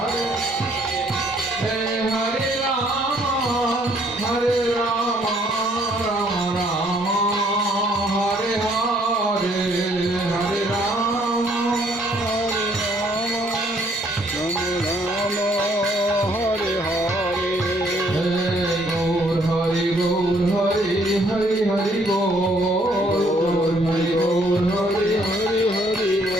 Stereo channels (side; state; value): both; normal; correlation 0.65